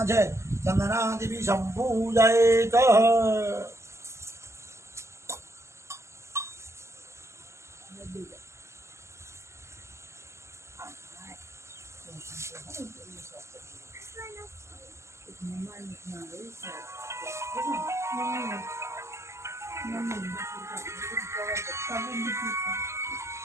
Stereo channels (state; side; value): late; left; 0.13 ms